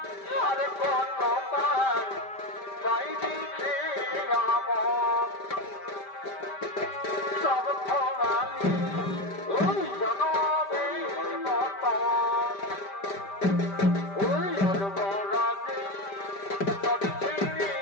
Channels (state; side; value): late; right; 5.1 ms